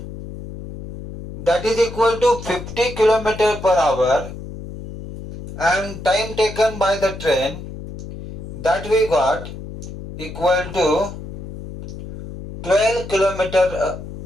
that is equal to 50 km per hour, and time taken by the train, that we got equal to 12 kilometer,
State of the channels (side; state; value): left; noise; hum, 11 dB below the sound